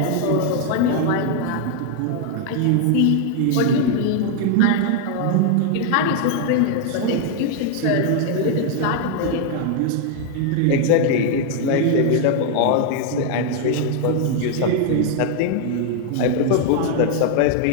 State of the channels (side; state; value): both; different; correlation 0.00